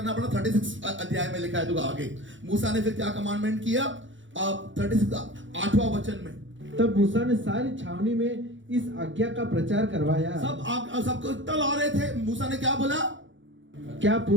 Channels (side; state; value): left; late; 0.55 ms